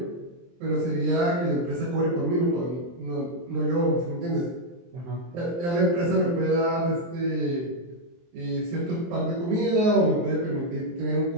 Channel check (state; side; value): late; left; 23 ms